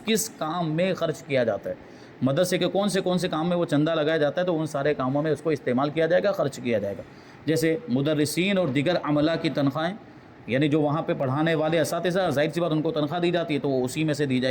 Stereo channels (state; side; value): identical; both; correlation 1.00